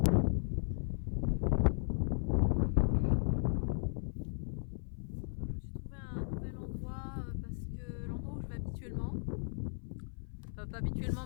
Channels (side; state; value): right; silent; 54 dB below the other